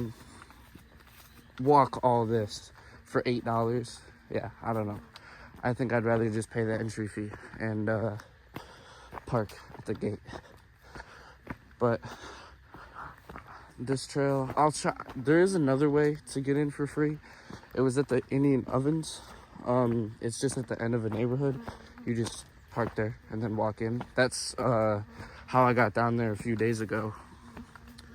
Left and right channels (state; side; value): identical; both; correlation 1.00